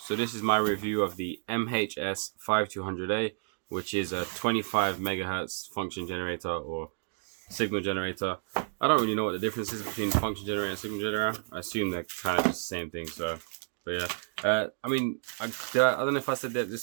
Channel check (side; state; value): left; silent; digital silence